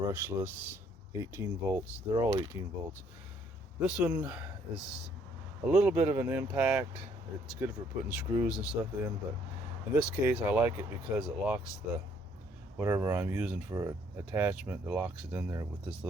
18 volts. They're all 18 volts. This one is a little bit of an impact. It's good for putting screws and stuff in, but in this case I like it because it locks the whatever I'm using for attachment. It locks it in there with this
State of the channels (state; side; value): normal; both; correlation 0.65